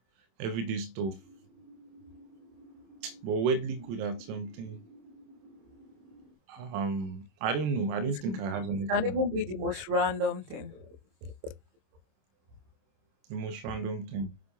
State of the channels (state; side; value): late; left; 26 ms